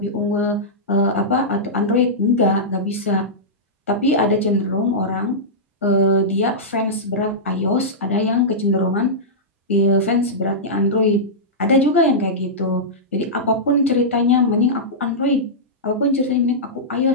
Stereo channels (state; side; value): normal; both; correlation -0.13